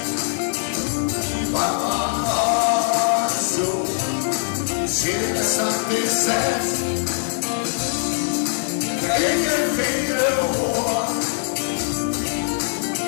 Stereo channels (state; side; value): silent; right; 64 dB below the other